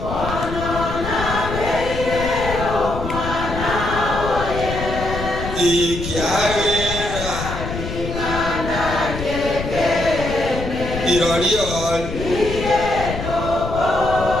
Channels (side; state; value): left; noise; rumble, 7 dB below the sound